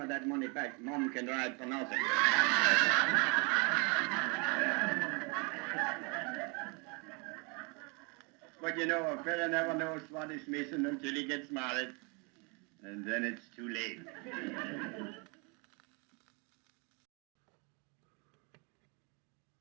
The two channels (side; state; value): left; quieter; 32.3 dB